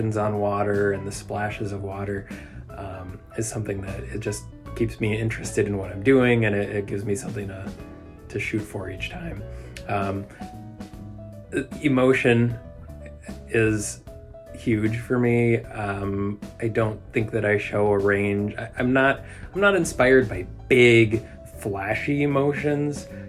on water and the splashes of water is something that it just keeps me interested in what I'm doing, and it gives me something to shoot for each time. Emotion is huge for me. I don't think that I show a range. I'm not inspired by big, flashy emotions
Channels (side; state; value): both; identical; correlation 1.00